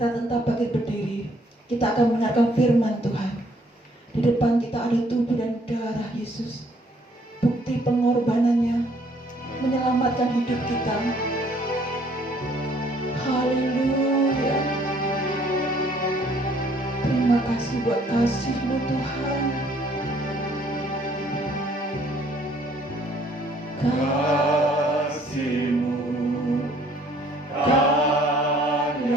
tetap bangkit berdiri. Kita akan mendengarkan firman Tuhan. Di depan kita ada tubuh dan darah Yesus. Bukti pengorbanannya menyelamatkan hidup kita. Haleluya. Terima kasih buat kasih-Mu Tuhan. Kasih-Mu,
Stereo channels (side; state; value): both; normal; correlation 0.62